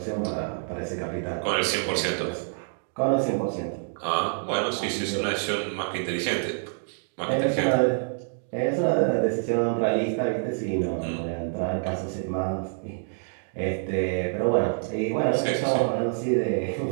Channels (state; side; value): silent; left; digital silence